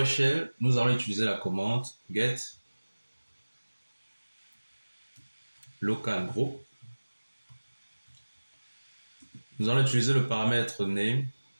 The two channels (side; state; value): both; inverted; correlation -1.00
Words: nous allons utiliser la commande get local group. Nous allons utiliser le paramètre name.